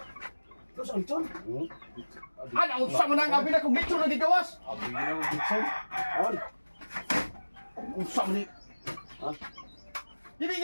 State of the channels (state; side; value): inverted; both; correlation -1.00